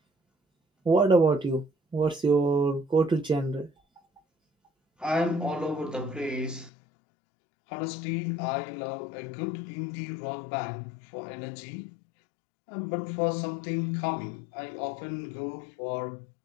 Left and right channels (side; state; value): right; drops out; at 6.7 s